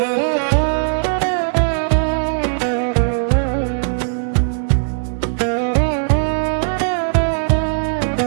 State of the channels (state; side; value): silent; left; digital silence